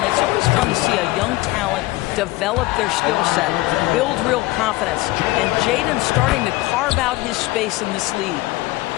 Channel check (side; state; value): right; quieter; 19.6 dB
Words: It's always fun to see a young talent develop their skill set, build real confidence. And Jaden's starting to carve out his space in this league.